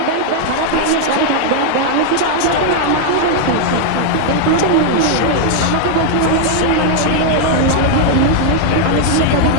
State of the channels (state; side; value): different; both; correlation 0.00